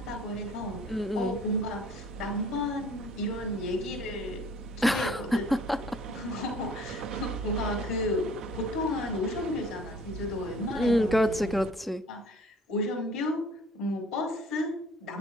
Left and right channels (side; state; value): both; normal; correlation 0.52